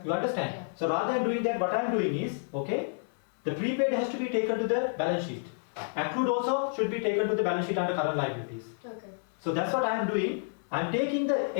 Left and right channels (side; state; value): right; silent; digital silence